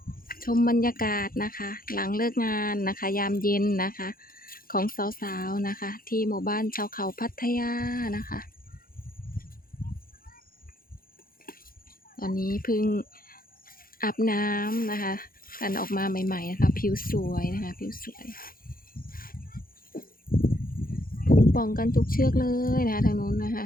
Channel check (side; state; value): right; late; 0.42 ms